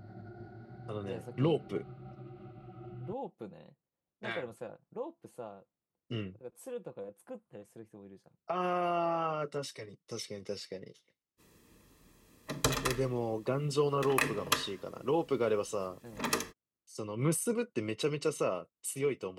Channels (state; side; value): identical; both; correlation 1.00